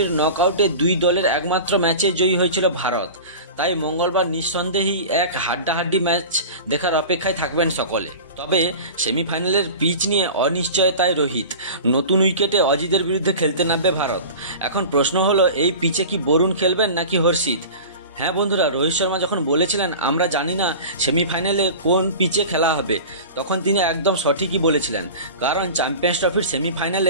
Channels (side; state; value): both; inverted; correlation -0.35